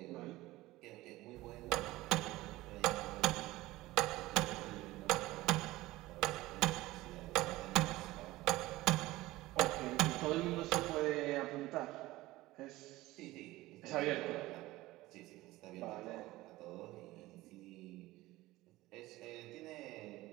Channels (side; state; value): left; quieter; 18.2 dB